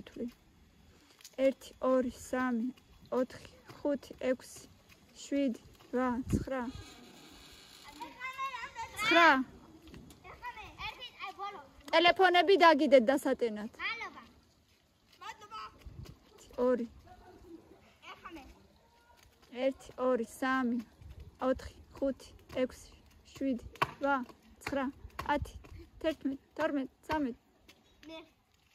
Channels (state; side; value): identical; both; correlation 1.00